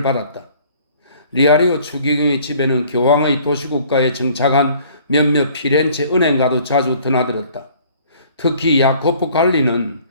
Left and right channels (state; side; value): inverted; both; correlation -0.55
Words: 받았다. 리아리오 추기경의 집에는 교황의 도시국가에 정착한 몇몇 피렌체 은행가도 자주 드나들었다. 특히 야코포 갈리는